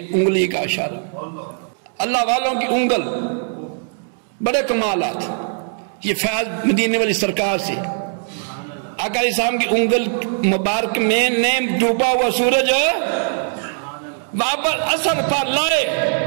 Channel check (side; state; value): left; silent; 66 dB below the other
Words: انگلی کا اشارہ، اللہ والوں کی انگل، بڑے کمالات، یہ فیض مدینے والی سرکار سے آقا علیہ السلام کی انگل مبارک میں نیم ڈوبا ہوا سورج واپس اثر پر لائے،